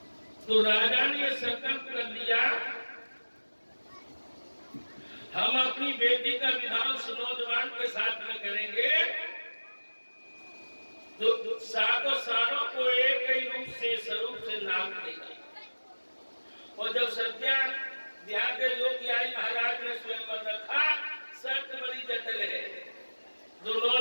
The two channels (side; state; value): both; inverted; correlation -1.00